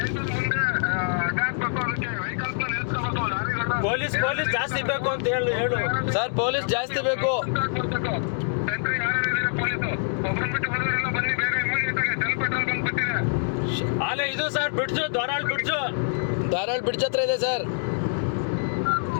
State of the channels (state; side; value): silent; right; digital silence